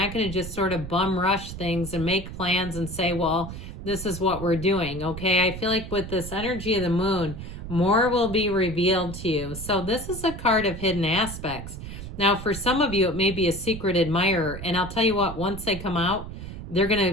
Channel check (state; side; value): noise; right; rumble, 10 dB below the sound